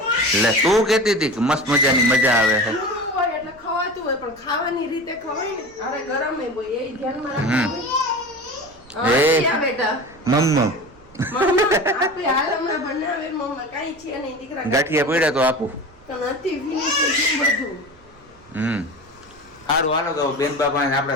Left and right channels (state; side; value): noise; right; rumble, 27 dB below the sound